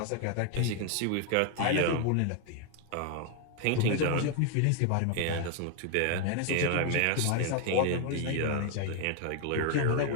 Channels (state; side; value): different; both; correlation 0.00